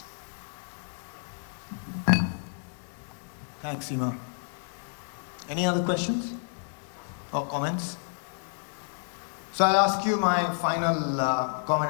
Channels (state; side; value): silent; right; digital silence